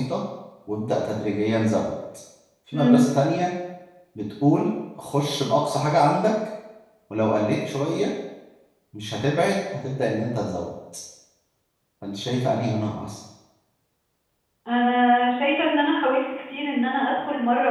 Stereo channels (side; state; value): both; identical; correlation 1.00